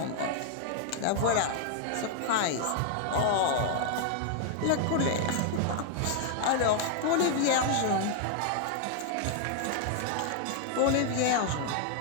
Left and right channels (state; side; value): different; both; correlation 0.00